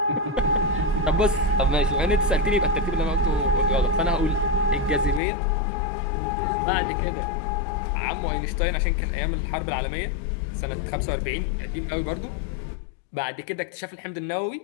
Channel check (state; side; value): drops out; right; at 5.2 s